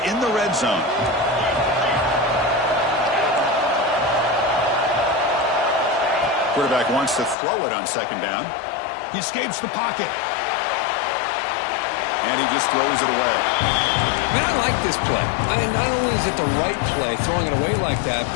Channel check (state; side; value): drops out; right; at 7.4 s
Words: the red zone. Quarterback wants to throw it on 2nd down. He escapes the pocket. And he just throws it away. Man, I like this play. Not only is it the right play, throwing it away like that,